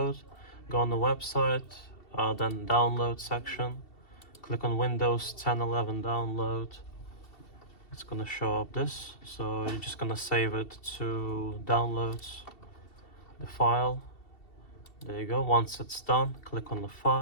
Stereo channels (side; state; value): right; late; 2.7 ms